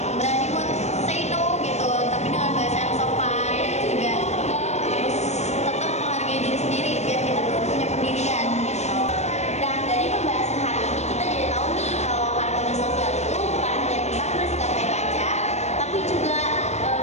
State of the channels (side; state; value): right; late; 0.32 ms